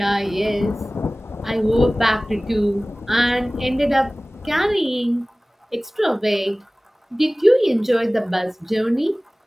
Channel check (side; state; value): both; normal; correlation 0.98